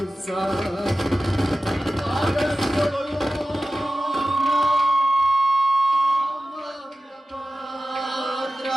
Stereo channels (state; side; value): normal; both; correlation 0.94